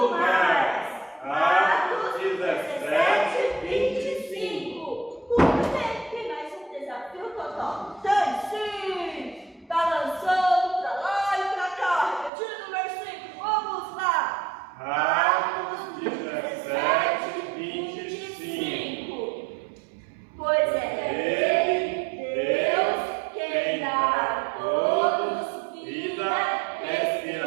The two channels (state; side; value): drops out; left; at 12.3 s